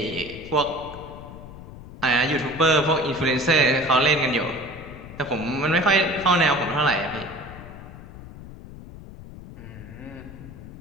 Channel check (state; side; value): noise; left; rumble, 15 dB below the sound